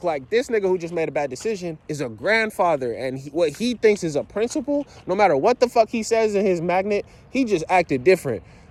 Like, this nigga who just made a bad decision is a grandfather. And what he thinks is a principle, no matter what the fuck he says in his magnet, he just acted different.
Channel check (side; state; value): both; identical; correlation 1.00